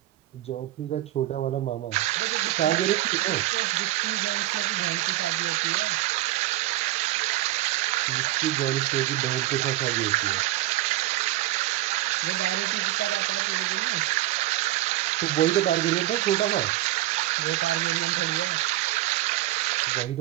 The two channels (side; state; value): left; quieter; 16.4 dB